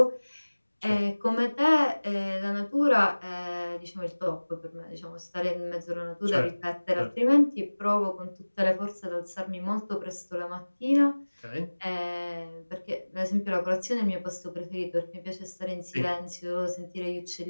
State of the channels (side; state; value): both; inverted; correlation -1.00